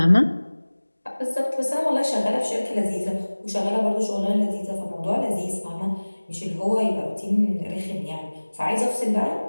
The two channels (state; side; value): inverted; both; correlation -1.00